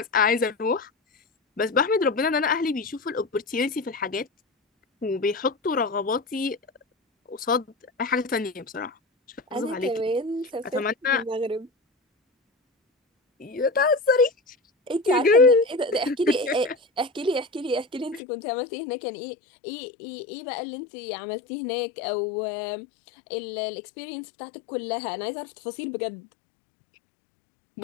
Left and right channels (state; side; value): drops out; right; at 18.2 s